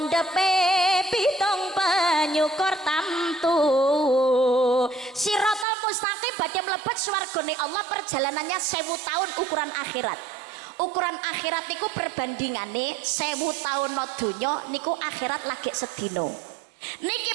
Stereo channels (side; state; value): left; drops out; at 5.7 s